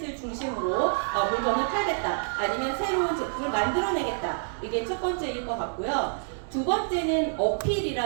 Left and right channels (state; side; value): silent; left; digital silence